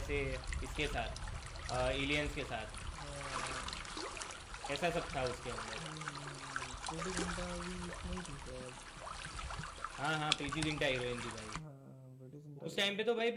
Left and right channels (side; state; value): both; identical; correlation 1.00